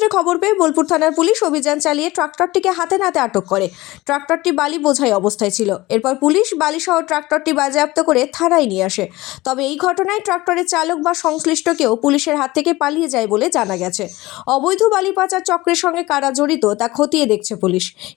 খবর পেয়ে বোলপুর থানার পুলিশ অভিযান চালিয়ে ট্রাক্টরটিকে হাতে নাতে আটক করে। ট্রাক্টরটি বালি বোঝাই অবস্থায় ছিল। এরপর পুলিশ বালিসহ ট্রাক্টরটি বাজেয়াপ্ত করে থানায় নিয়ে আসে। তবে এই ঘটনায় ট্রাক্টরের চালক বা সংশ্লিষ্ট কেউ পুলিশের হাত থেকে পালিয়ে যায় বলে জানা গেছে। অবৈধ বালি পাচার চক্রের সঙ্গে কারা জড়িত তা খতিয়ে দেখছে পুলিশ।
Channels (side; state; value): right; quieter; 19.5 dB